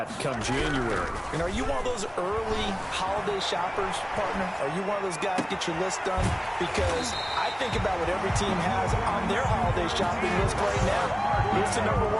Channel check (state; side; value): identical; both; correlation 1.00